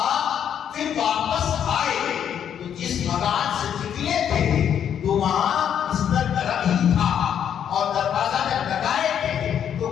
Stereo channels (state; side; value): quieter; right; 9.0 dB